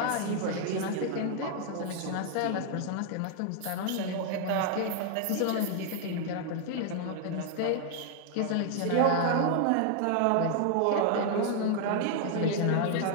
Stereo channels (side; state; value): both; different; correlation 0.00